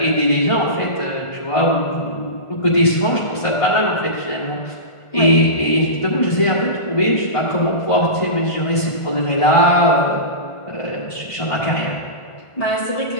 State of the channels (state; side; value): late; right; 1.5 ms